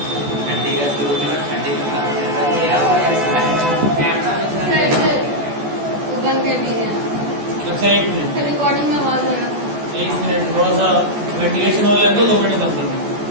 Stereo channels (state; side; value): late; left; 14 ms